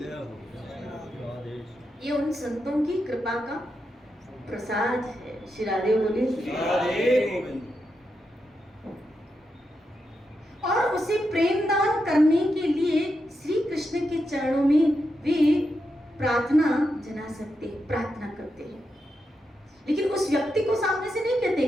ये उन संतों की कृपा का प्रसाद है। श्री राधे बोले, और उसे प्रेम दान करने के लिए श्री कृष्ण के चरणों में वे प्रार्थना जना सकते हैं, प्रार्थना करते हैं, लेकिन उस व्यक्ति को सामने से नहीं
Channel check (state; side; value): normal; both; correlation 0.86